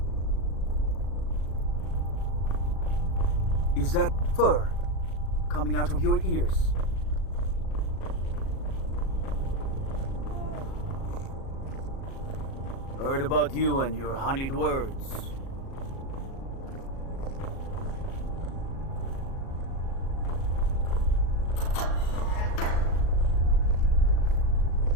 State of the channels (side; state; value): right; late; 37 ms